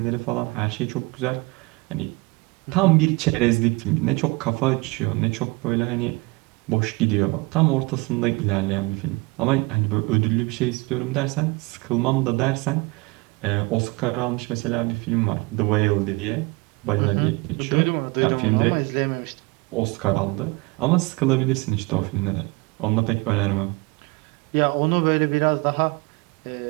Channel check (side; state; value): left; quieter; 25.0 dB